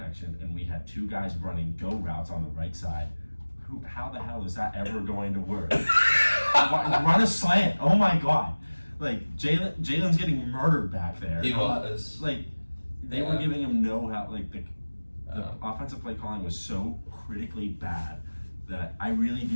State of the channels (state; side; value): inverted; both; correlation -1.00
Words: and we had two guys running go routes on the right side. How the hell is that ever going to work? Run a slant. Oh my God. Like, Jalen's getting murdered back there. He was. Like, they were giving him no help. Like, the offensive play calling was so critically bad that I really